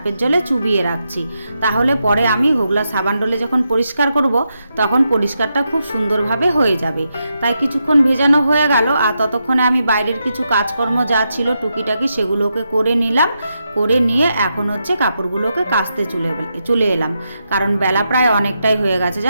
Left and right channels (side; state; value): both; inverted; correlation -0.84